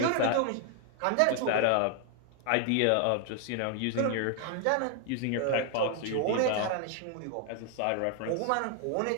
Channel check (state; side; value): different; both; correlation 0.00